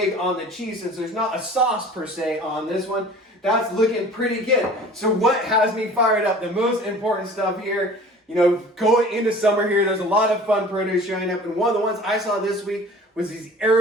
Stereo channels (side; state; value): both; normal; correlation 0.45